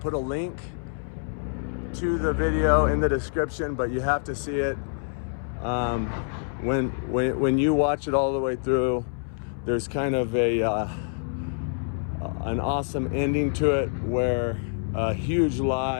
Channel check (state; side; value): silent; right; 60 dB below the other